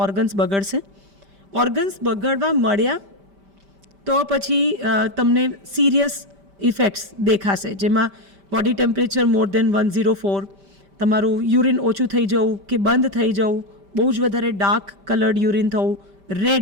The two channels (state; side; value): late; left; 5.1 ms